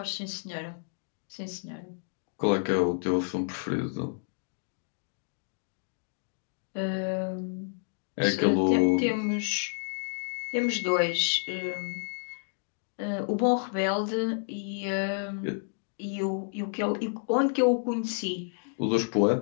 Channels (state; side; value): silent; right; digital silence